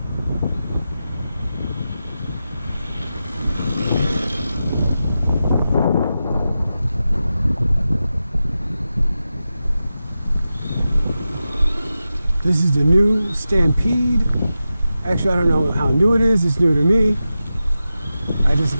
This is the new Stampede. Actually, I don't know how new it is. It's new to me. I just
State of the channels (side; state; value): both; inverted; correlation -0.92